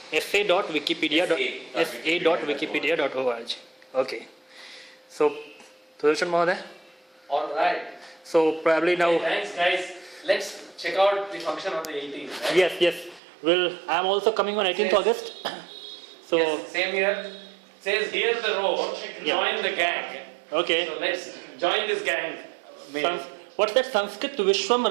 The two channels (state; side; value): drops out; left; at 13.2 s